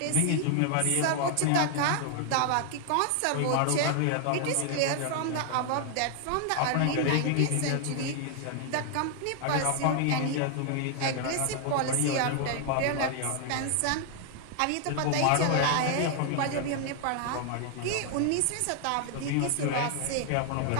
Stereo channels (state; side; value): different; both; correlation 0.00